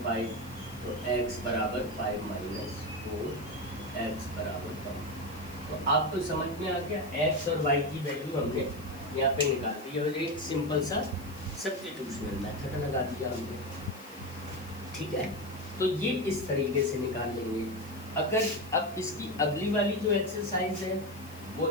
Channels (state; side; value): noise; left; hiss, 20 dB below the sound